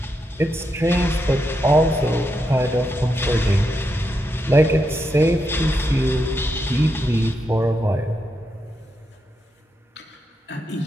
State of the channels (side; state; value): both; normal; correlation 0.83